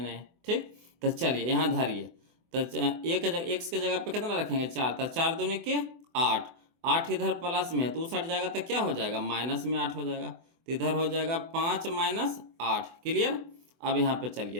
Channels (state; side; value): late; left; 24 ms